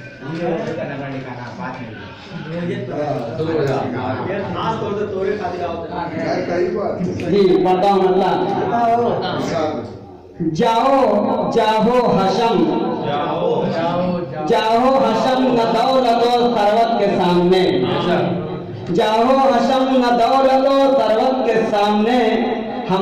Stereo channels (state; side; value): identical; both; correlation 1.00